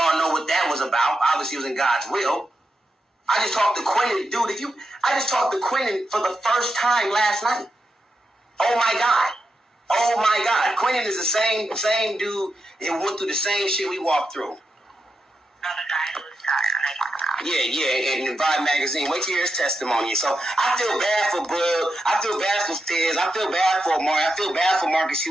know what that was about. Obviously, it was in God's will. I just talked to Quentin, dude. I just talked to Quentin for the first time last night. Oh my God. Quentin is the same dude and went through the same shit we walked through. Another guy who was tired. I talk about. Yeah, and Vibe Magazine. Wait to hear his testimony. So I feel bad for Bud. I feel bad for Fizz. I feel bad for Amari. I feel bad for Marcus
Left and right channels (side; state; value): both; normal; correlation 0.86